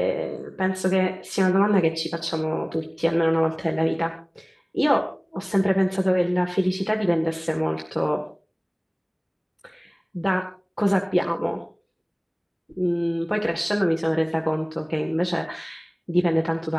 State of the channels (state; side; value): identical; both; correlation 1.00